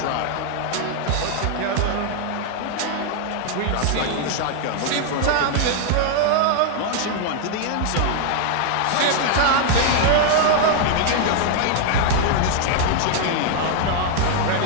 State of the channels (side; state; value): both; different; correlation 0.00